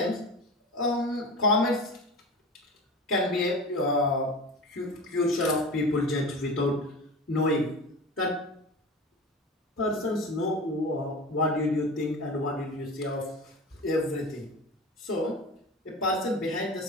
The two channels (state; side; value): normal; both; correlation 0.32